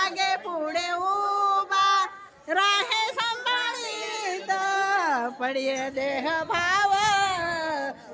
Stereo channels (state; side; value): identical; both; correlation 1.00